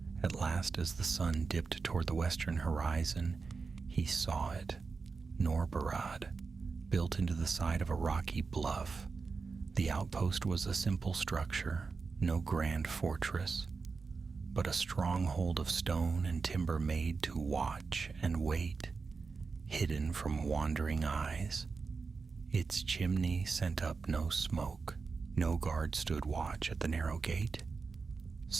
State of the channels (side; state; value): left; quieter; 4.7 dB